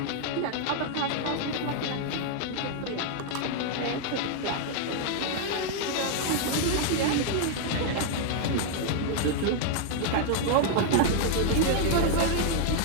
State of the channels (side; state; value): both; different; correlation 0.00